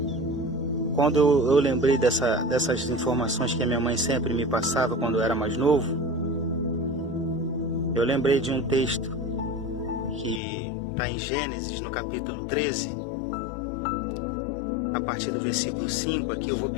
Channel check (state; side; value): drops out; right; at 10.4 s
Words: quando eu lembrei dessas informações que a minha mãe sempre me passava quando eu era mais novo, eu lembrei de um texto que está em Gênesis, no capítulo 13, a partir do versículo 5. Aqui eu vou